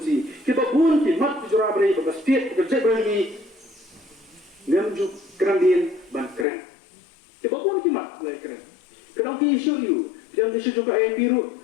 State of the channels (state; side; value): drops out; right; at 6.5 s